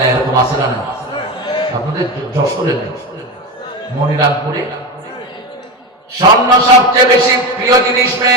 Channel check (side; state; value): both; normal; correlation 0.20